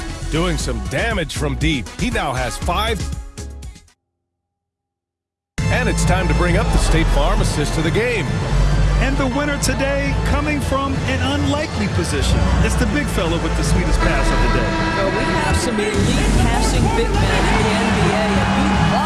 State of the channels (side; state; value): both; identical; correlation 1.00